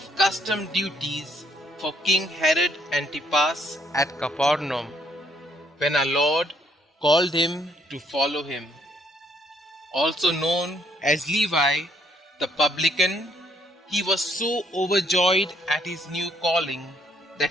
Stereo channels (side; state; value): both; normal; correlation 0.68